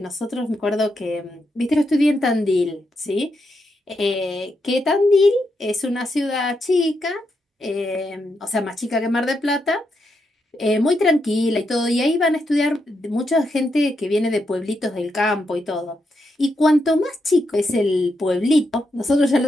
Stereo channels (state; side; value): normal; both; correlation 0.82